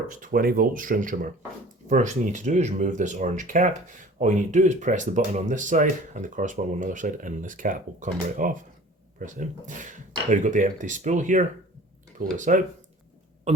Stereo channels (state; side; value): normal; both; correlation 0.45